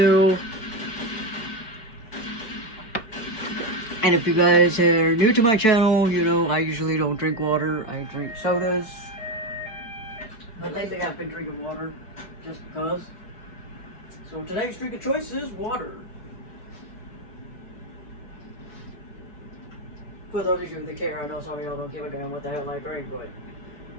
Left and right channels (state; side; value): late; right; 4.6 ms